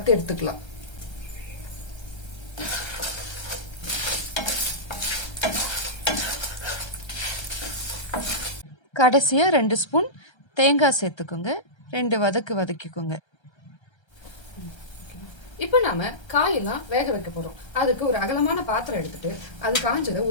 எடுத்துக்கலாம். கடைசியா 2 ஸ்பூன் தேங்காய் சேர்த்துக்கோங்க. 2 வதக்கிக்கோங்க. இப்ப நாம காயெல்லாம் வேக வைக்க போறோம். அதுக்கு ஒரு அகலமான பாத்திரம் எடுத்துட்டு அது காஞ்சத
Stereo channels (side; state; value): right; late; 1.3 ms